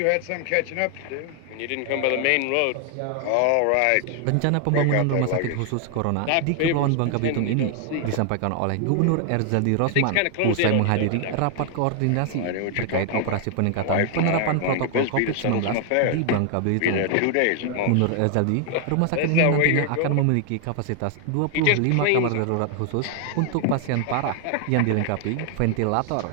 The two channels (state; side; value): different; both; correlation 0.00